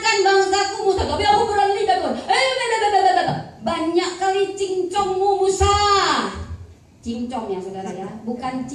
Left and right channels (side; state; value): both; identical; correlation 1.00